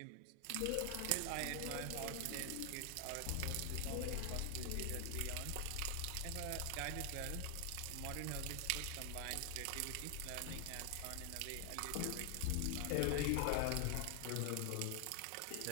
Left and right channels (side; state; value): both; different; correlation 0.00